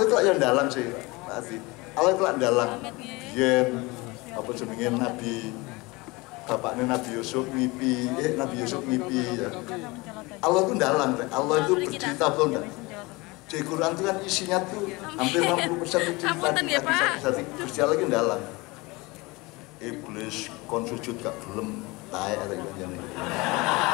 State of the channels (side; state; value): right; quieter; 23.9 dB